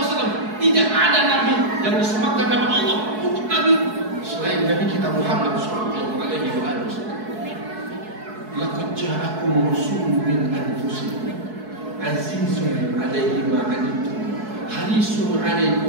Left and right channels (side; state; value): left; late; 4.7 ms